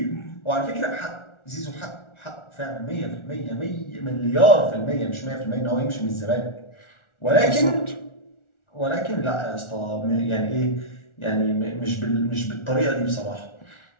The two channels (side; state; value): right; late; 1.4 ms